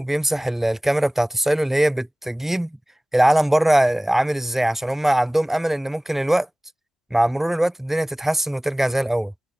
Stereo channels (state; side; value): normal; both; correlation 0.98